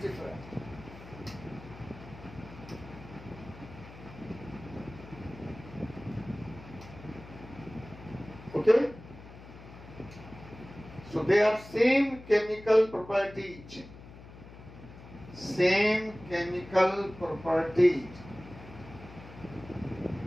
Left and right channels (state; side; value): noise; left; hum, 17 dB below the sound